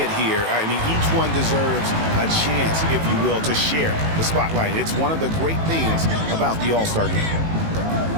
here, I mean, each one deserves a chance, if you will, to share the spotlight. It's one of the great things about the All-Star game.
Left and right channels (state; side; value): late; left; 18 ms